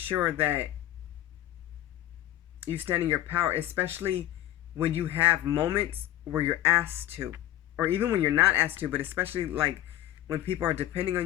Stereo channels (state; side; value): quieter; right; 13.7 dB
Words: that you stand in your power, especially when you have moments where you're asked to, or even when you're not asked to, but especially like when people are depending on